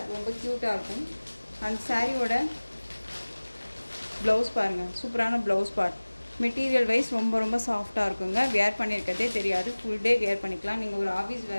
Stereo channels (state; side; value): inverted; both; correlation -1.00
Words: ரொம்ப க்யூட்டாக இருக்கும். அந்த சாரியோட ப்ளவுஸ் பாருங்கள், சூப்பரான ப்ளவுஸ் பார்ட். மெட்டீரியல் வைஸ் ரொம்ப ரொம்ப சாஃப்டாக இருக்குங்க. வியர் பண்ணியிருக்கிறதே தெரியாது. ஃபுல் டே வியர் பண்ணிக்கலாம். நீங்கள் ஒரு ஆஃபீஸ்